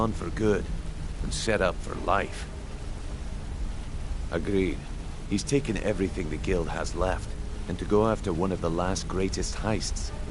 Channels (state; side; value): identical; both; correlation 1.00